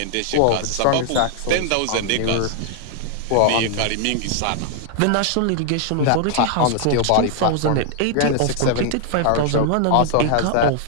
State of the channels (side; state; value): both; different; correlation 0.00